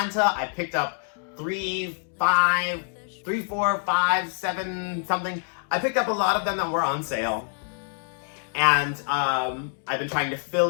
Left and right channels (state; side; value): silent; right; 61 dB below the other